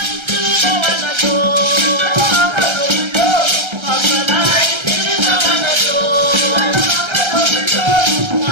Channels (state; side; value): late; left; 1.3 ms